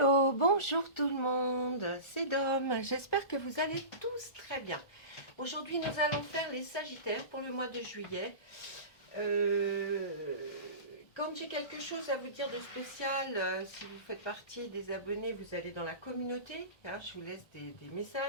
bonjour tout le monde, c'est Dom, j'espère que vous allez tous très bien. Aujourd'hui nous allons faire les Sagittaires pour le mois de juillet. Quand j'ai quelque chose à vous dire de spécial, si vous faites partie des abonnés, vous allez dans la communauté, hein, je vous laisse des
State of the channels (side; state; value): right; late; 1.6 ms